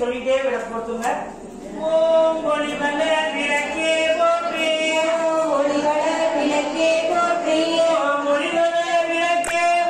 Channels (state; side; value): identical; both; correlation 1.00